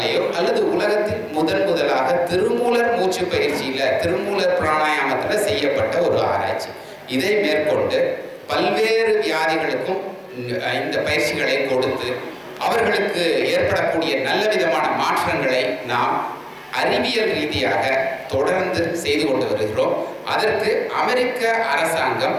அல்லது உலகத்தில் முதலாக திருமூலர் மூச்சு பயிற்சியில, திருமூலர் பிராணாயாமத்தில் செய்யப்பட்ட ஒரு ஆராய்ச்சி. இதை மேற்கொண்டு பல்வேறு வியாதிகளுக்கும் இந்த பயிற்சிகளை கொடுத்து அவர்களுக்கு ஏற்படக்கூடிய நல்ல விதமான மாற்றங்களை நாம் அறிவியல் ரீதியாக தொடர்ந்து செய்து கொண்டு வருகிறோம். அதற்கு அமெரிக்க அரசாங்கம்,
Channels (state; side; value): identical; both; correlation 1.00